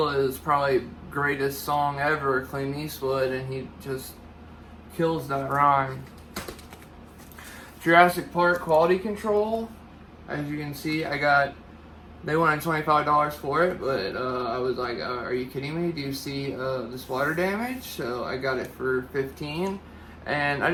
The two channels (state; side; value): identical; both; correlation 1.00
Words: probably greatest song ever, Clint Eastwood, and he just kills that rhyme. Jurassic Park Quality Control, as you can see, they wanted $25 for it, but I was like, are you kidding me? Do you see this water damage? So I got it for $15, and I